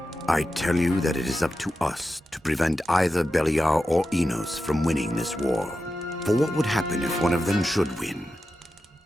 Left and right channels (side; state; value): both; normal; correlation 0.91